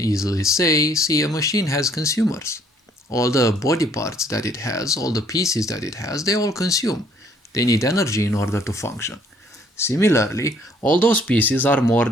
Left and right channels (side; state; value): both; normal; correlation 0.63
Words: say, see, a machine has consumers. All the body parts that it has, all the pieces that it has, they all consume. They need energy in order to function. Similarly, all those pieces are more